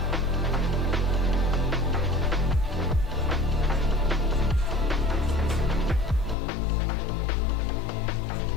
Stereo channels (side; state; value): right; drops out; at 6.4 s